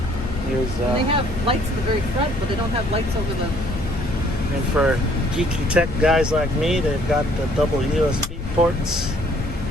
Here's, they have lights at the very front, but they don't have lights over the... And for geeky tech guys like me, they've got the double USB ports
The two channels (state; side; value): noise; left; rumble, 8 dB below the sound